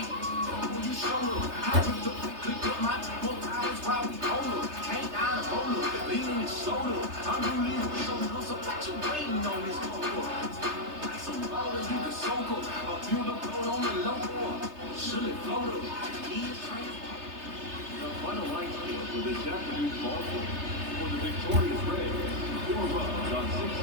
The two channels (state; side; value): late; left; 3.3 ms